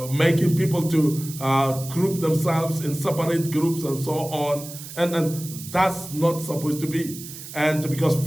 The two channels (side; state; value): right; noise; hiss, 13 dB below the sound